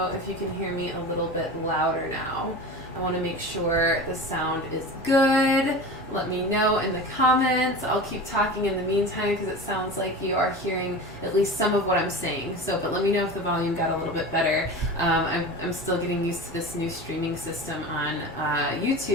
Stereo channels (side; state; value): both; normal; correlation 0.31